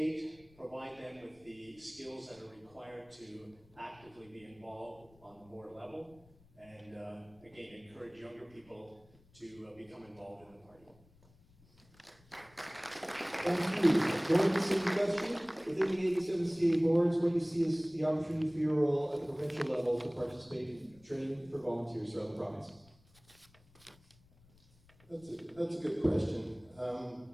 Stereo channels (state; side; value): noise; left; rumble, 28 dB below the sound